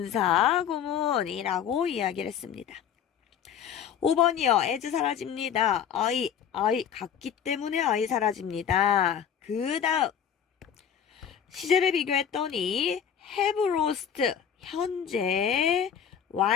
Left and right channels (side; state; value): right; quieter; 8.3 dB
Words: 분사구문이라고 이야기를 했습니다. 5번이요. as 사라집니다. I 같기 때문에 I 사라집니다. 그 다음 시제를 비교했더니 have lost 현재